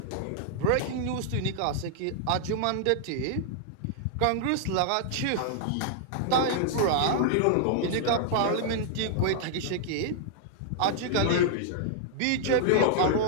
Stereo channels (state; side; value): different; both; correlation -0.01